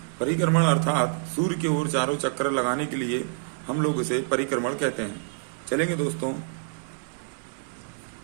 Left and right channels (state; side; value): silent; left; digital silence